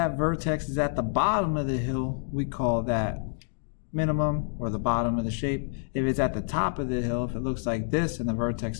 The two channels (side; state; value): right; silent; digital silence